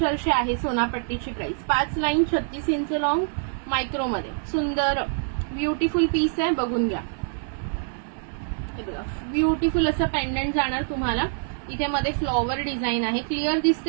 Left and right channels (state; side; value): silent; left; 62 dB below the other